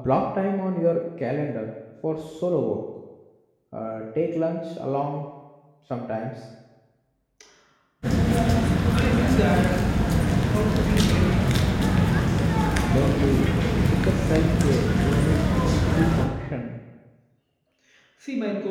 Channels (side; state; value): both; identical; correlation 1.00